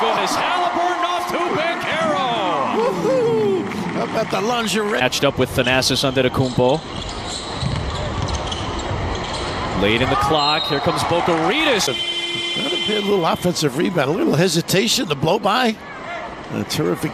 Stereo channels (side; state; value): both; identical; correlation 1.00